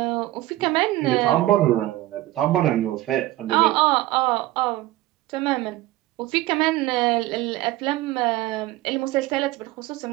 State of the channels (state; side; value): quieter; left; 16.6 dB